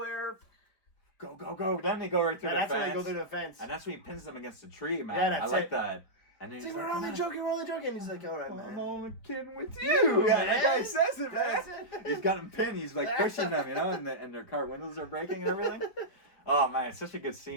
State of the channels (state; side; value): late; right; 5.1 ms